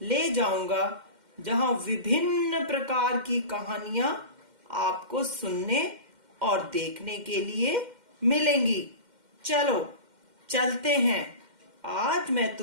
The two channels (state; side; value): late; left; 2.1 ms